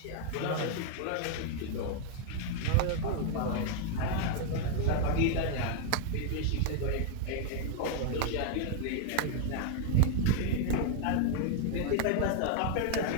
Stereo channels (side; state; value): both; different; correlation 0.00